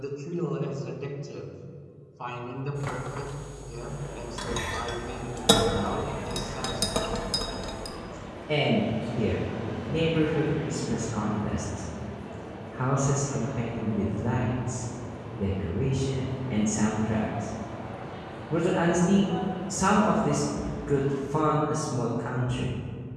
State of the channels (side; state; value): both; identical; correlation 1.00